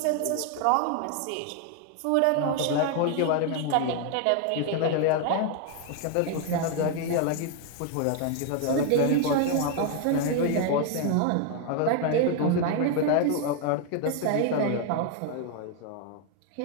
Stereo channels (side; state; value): both; different; correlation 0.01